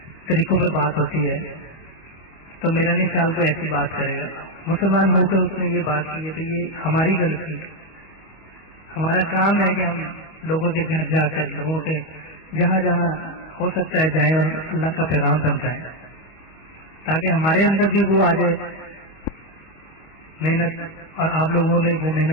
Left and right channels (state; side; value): late; right; 25 ms